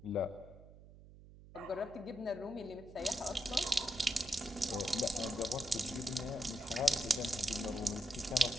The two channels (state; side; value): noise; right; hum, 19 dB below the sound